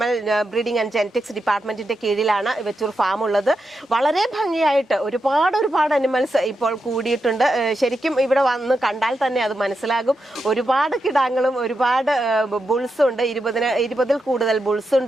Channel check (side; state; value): both; normal; correlation 0.86